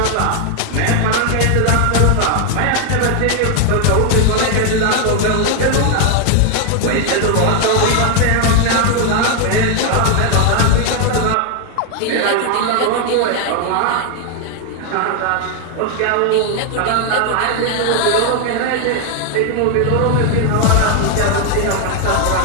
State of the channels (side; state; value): both; different; correlation 0.00